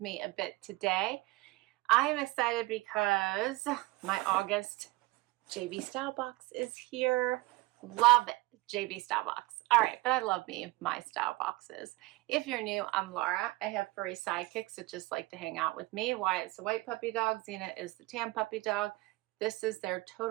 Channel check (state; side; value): quieter; left; 21.5 dB